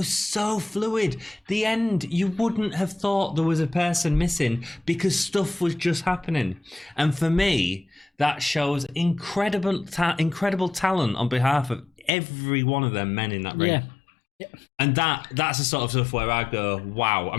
so fluid. The end, you wouldn't have thought there was a person missing because stuff was just happening. And for me, that shows incredible talent on behalf of every one of them men in that ring. Yeah. And that's the sort of stuff where I go, wow. I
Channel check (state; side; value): drops out; right; at 12.1 s